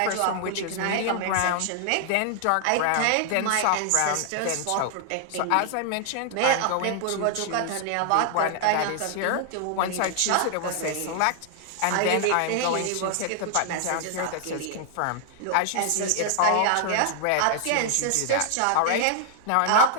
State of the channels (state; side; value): different; both; correlation 0.00